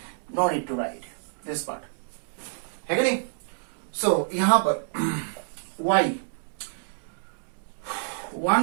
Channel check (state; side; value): silent; left; digital silence